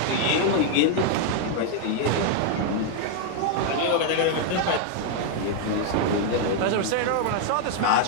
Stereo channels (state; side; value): different; both; correlation 0.00